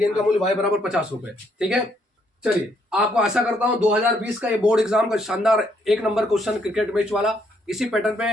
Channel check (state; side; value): normal; both; correlation 0.71